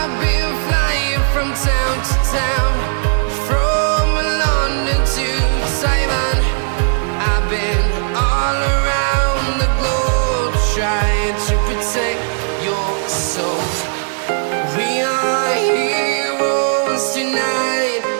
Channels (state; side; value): silent; left; digital silence